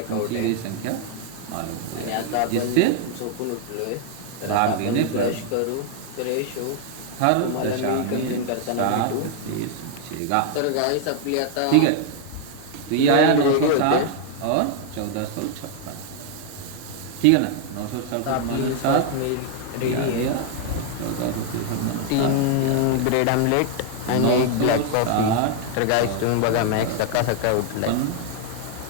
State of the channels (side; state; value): both; different; correlation 0.00